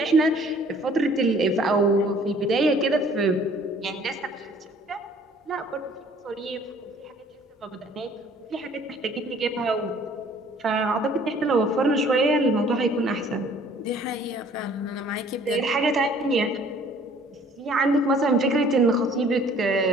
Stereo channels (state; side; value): normal; both; correlation 0.55